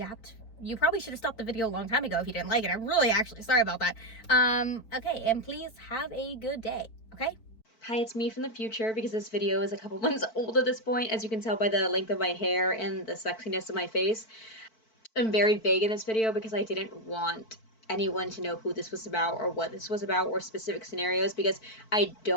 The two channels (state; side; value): late; right; 4.5 ms